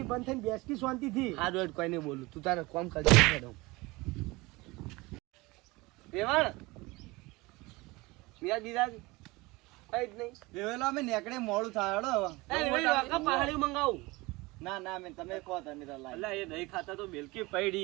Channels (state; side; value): quieter; left; 22.7 dB